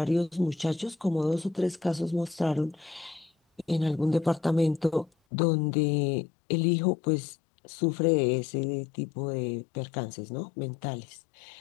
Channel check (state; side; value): drops out; right; at 5.1 s